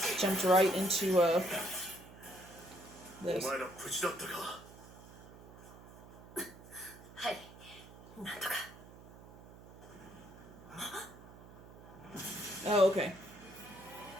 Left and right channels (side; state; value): right; noise; hum, 18 dB below the sound